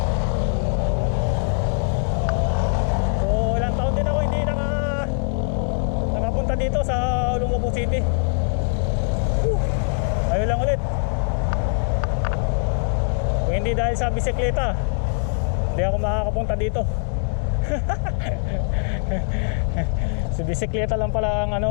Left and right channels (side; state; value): right; silent; 64 dB below the other